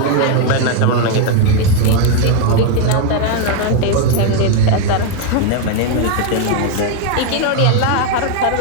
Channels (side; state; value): both; different; correlation 0.01